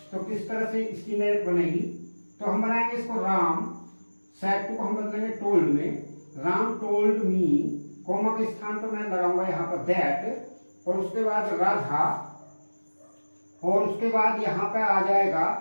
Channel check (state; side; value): inverted; both; correlation -1.00